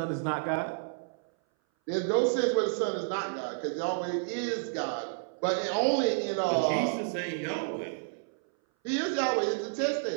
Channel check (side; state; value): left; silent; 58 dB below the other